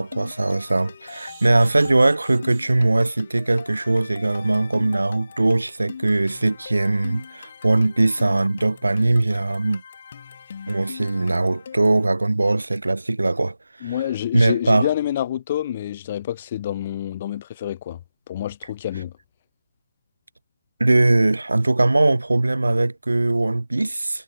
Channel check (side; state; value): both; inverted; correlation -0.96